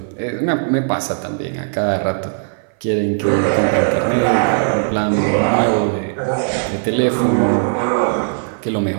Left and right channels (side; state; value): left; silent; 60 dB below the other